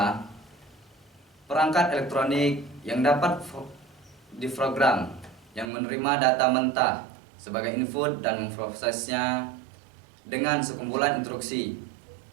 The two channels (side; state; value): left; drops out; at 5.7 s